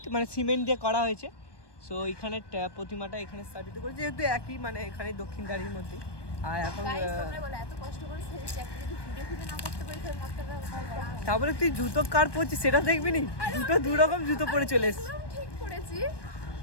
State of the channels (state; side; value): late; right; 1.2 ms